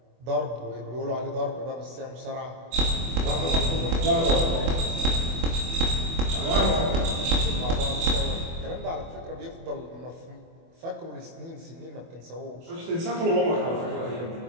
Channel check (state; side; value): late; left; 24 ms